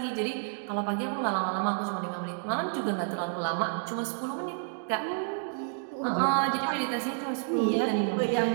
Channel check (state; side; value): silent; left; digital silence